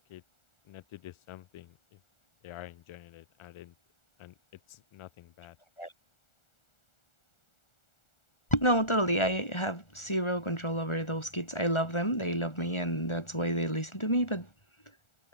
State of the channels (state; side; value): late; right; 1.4 ms